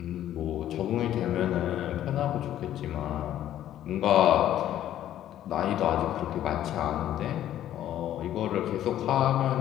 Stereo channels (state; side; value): quieter; right; 12.0 dB